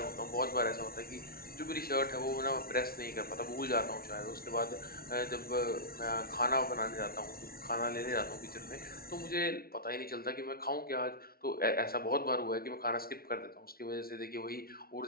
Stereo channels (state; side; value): late; right; 0.44 ms